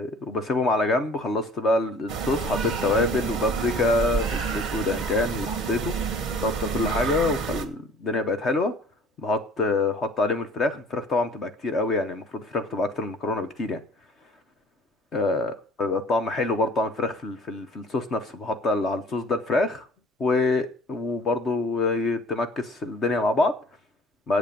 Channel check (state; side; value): normal; both; correlation 0.50